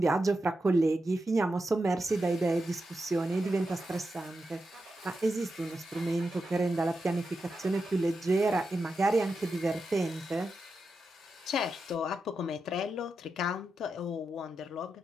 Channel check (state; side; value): normal; both; correlation 0.88